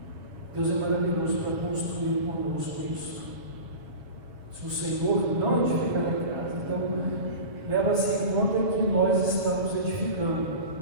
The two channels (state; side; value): late; left; 6.3 ms